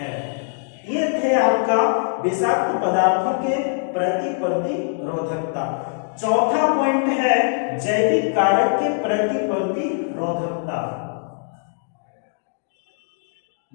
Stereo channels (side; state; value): right; silent; digital silence